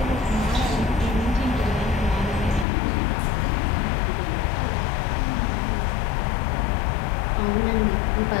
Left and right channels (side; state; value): right; drops out; at 2.7 s